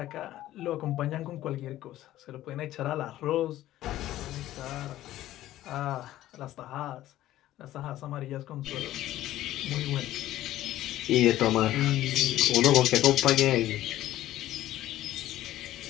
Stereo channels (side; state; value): right; quieter; 14.3 dB